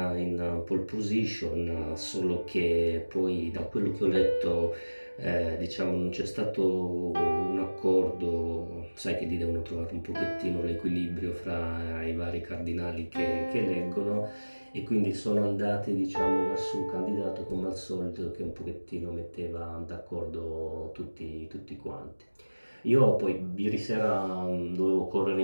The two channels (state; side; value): inverted; both; correlation -1.00